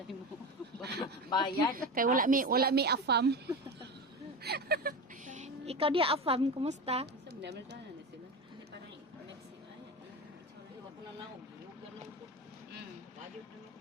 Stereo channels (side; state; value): both; normal; correlation 0.24